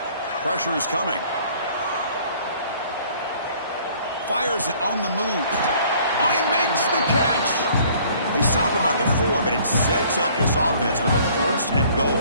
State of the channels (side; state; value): both; inverted; correlation -0.56